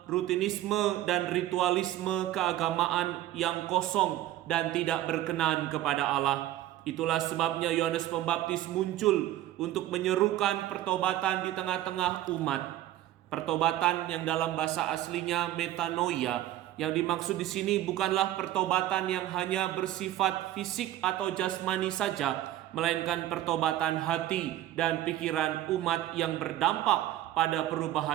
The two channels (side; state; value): left; quieter; 13.6 dB